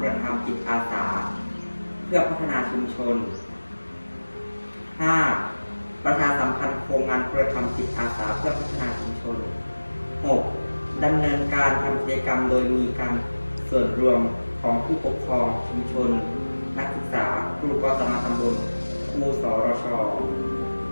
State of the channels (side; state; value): both; inverted; correlation -1.00